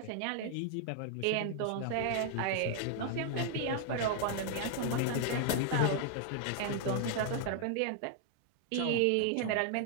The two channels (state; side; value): different; both; correlation 0.00